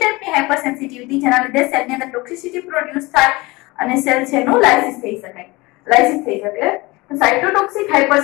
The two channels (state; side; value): quieter; right; 22.7 dB